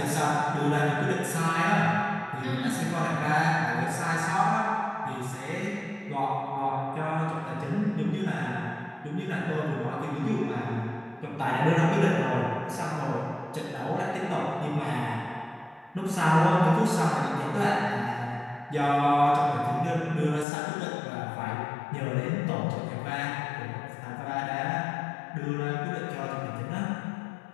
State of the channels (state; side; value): drops out; right; at 20.5 s